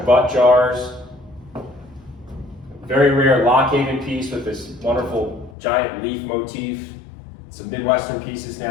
Butt jars. Very rare Lockhaven piece with this wonderful giant leaf motif. Some Midwestern pieces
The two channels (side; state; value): right; drops out; at 5.6 s